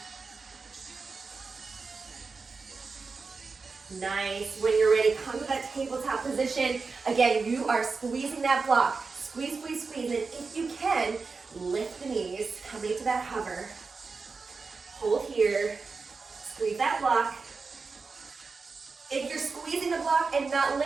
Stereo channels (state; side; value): quieter; left; 4.5 dB